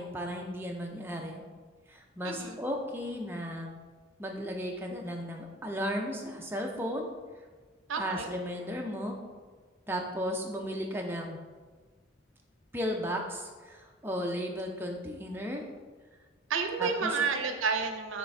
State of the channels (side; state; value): both; normal; correlation 0.39